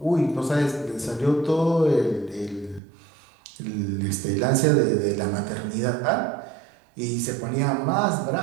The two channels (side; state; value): left; drops out; at 2.8 s